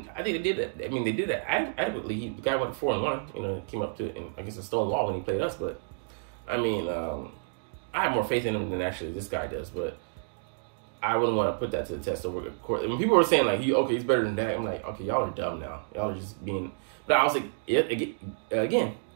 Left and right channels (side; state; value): left; silent; digital silence